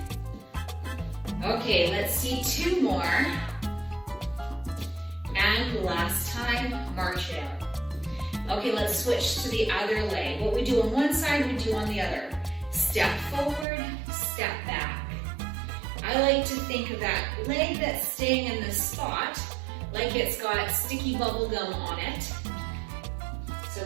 Okay, let's see 2 more. And last time, march it out. Okay, let's switch to the other leg. What we do on one side, we do on the other. Step forward, step back. I like to think of that leg that's staying in the spot like it's got sticky bubble gum on it. So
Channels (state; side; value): drops out; left; at 13.7 s